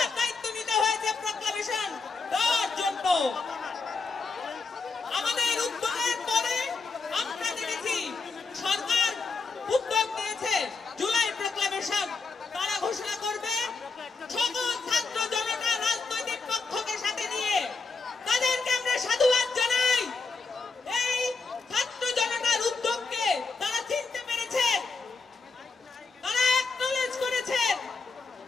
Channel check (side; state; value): right; quieter; 4.3 dB